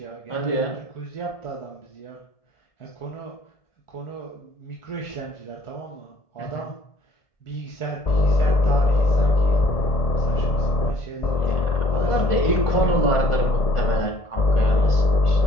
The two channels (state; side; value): late; right; 1.4 ms